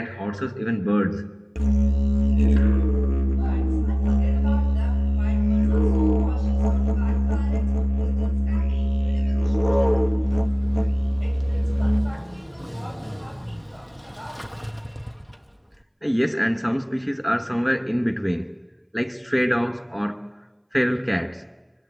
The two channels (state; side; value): identical; both; correlation 1.00